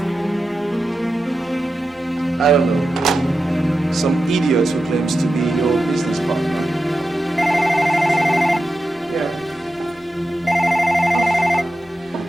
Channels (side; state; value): both; normal; correlation 0.91